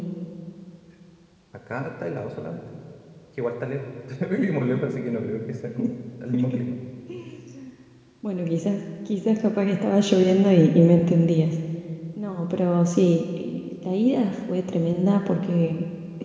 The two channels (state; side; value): identical; both; correlation 1.00